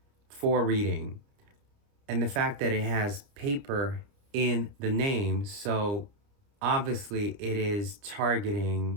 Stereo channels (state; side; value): late; left; 29 ms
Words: for reading, and the fact that it has paper in the name. So obviously it is